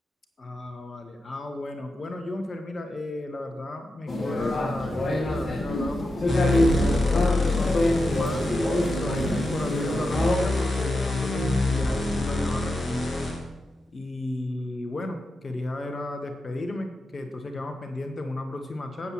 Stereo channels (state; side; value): normal; both; correlation 0.89